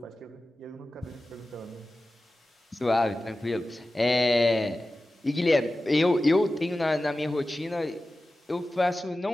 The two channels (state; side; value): normal; both; correlation 0.95